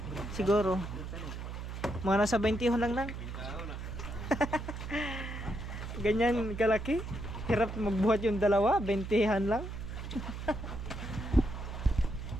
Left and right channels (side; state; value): right; noise; hum, 7 dB below the sound